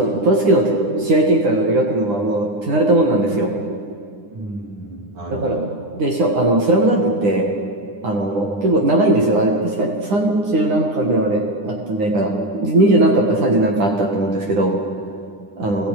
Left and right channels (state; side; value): late; left; 9.9 ms